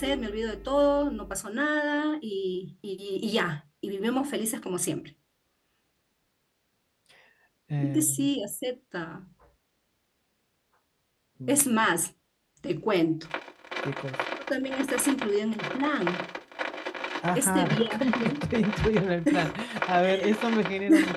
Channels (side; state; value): both; identical; correlation 1.00